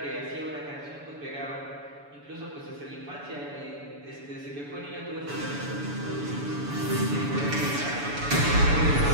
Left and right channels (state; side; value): late; left; 7.0 ms